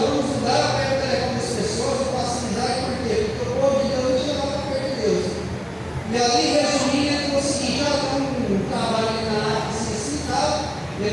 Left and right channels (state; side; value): identical; both; correlation 1.00